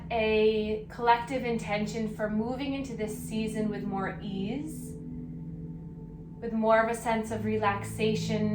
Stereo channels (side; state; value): both; identical; correlation 1.00